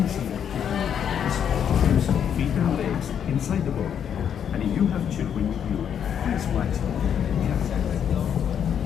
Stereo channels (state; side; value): quieter; right; 8.5 dB